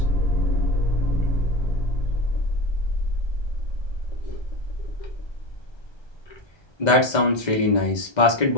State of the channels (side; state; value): right; late; 1.3 ms